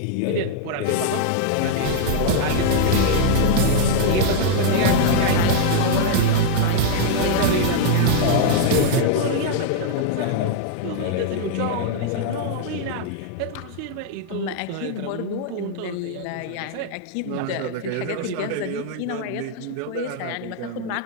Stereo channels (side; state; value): both; different; correlation -0.01